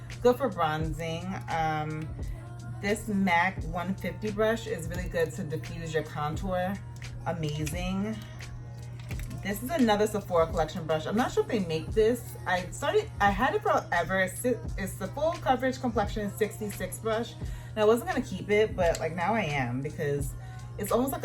Good for bronzing. This MAC 150 brush is really good to diffuse your contour. Amazing. This is another Sephora Collection brush. I'm not sure if they make this. I had it forever. It's the Full Coverage Complexion 66 brush. And I wasn't gonna keep it, but like now I am because it's almost like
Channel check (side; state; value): both; identical; correlation 1.00